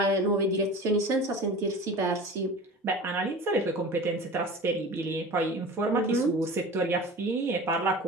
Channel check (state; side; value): normal; both; correlation 0.36